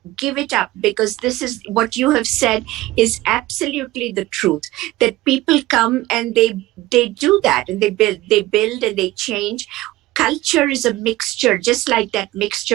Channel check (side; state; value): left; quieter; 17.6 dB